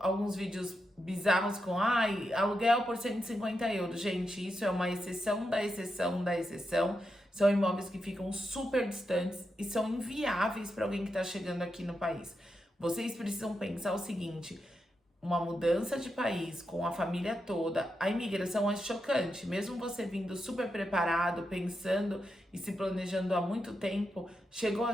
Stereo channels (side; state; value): both; normal; correlation 0.86